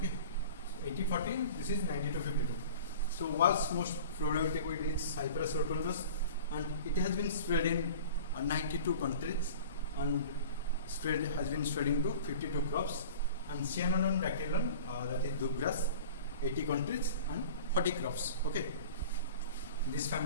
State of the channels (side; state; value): both; inverted; correlation -0.41